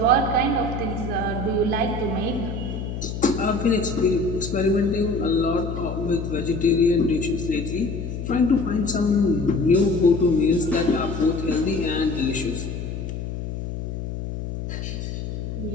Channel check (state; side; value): noise; left; hum, 6 dB below the sound